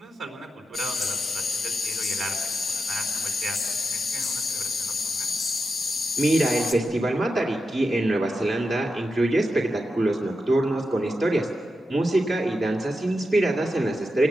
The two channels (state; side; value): normal; both; correlation 0.88